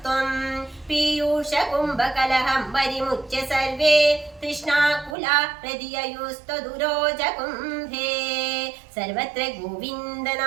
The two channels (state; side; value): drops out; left; at 5.2 s